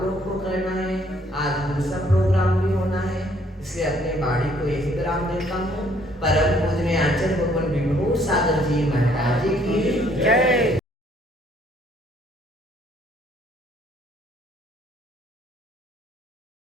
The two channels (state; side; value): normal; both; correlation 0.64